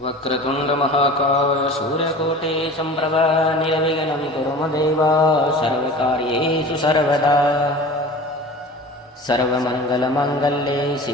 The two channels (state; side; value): normal; both; correlation 0.39